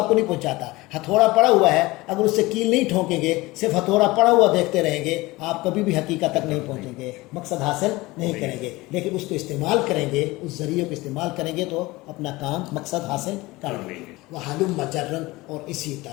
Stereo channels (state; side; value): quieter; right; 20.7 dB